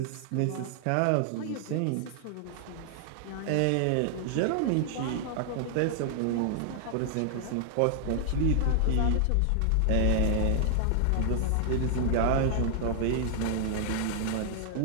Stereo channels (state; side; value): different; both; correlation 0.00